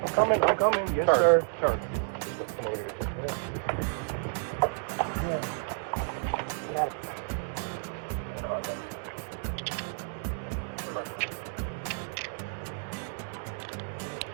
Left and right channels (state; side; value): silent; left; digital silence